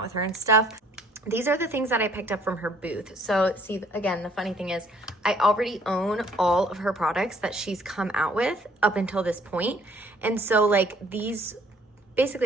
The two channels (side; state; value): both; normal; correlation 0.60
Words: with her and stuff. These are the things that I picked up from her booth. So see, again, the funny thing is I already own all of her products that she's come out with up until this point. And so like these,